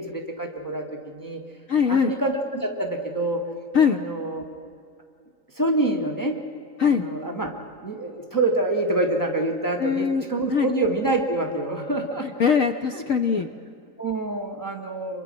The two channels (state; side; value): late; right; 3.9 ms